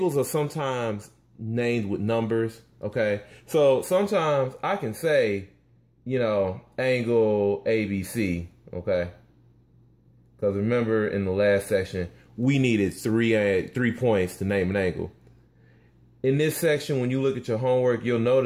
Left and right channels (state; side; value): identical; both; correlation 1.00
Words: are sometimes named with numbers. Okay, so sometimes I can say, you know, angle ABC. Okay, because remember in the last section we needed three points to name an angle. In this section, when you look at your homework, you'll